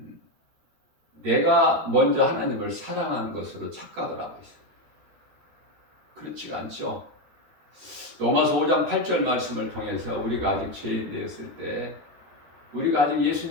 내가 먼저 하나님을 사랑하는 것으로 착각을 하고 있어요. 그렇지가 않죠. 로마서 5장 8절 말씀을 통해서 우리가 아직 죄인 되었을 때, 우리가 아직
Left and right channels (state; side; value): late; left; 13 ms